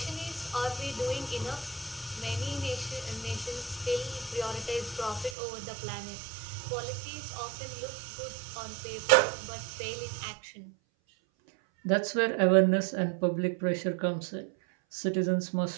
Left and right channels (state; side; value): drops out; left; at 5.4 s